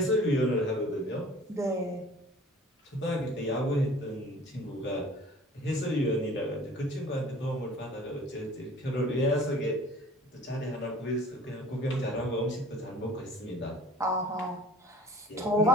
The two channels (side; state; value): both; normal; correlation 0.47